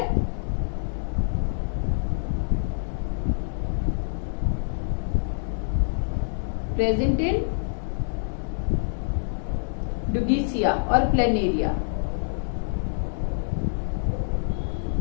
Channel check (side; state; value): right; silent; digital silence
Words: प्रेजेंट इन डुगीसिया और प्लेनेरिया।